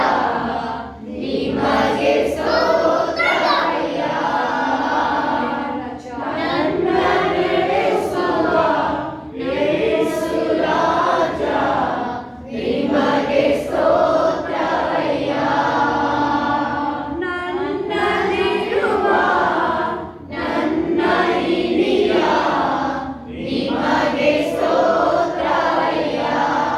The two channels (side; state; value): both; identical; correlation 1.00